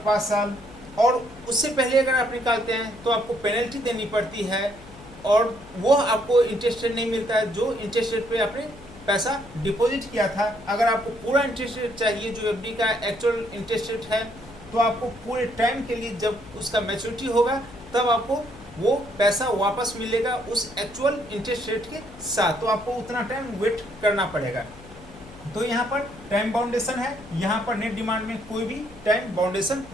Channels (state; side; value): noise; left; hum, 20 dB below the sound